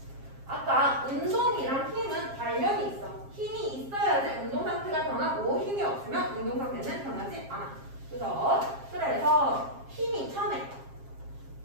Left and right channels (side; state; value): left; late; 7.4 ms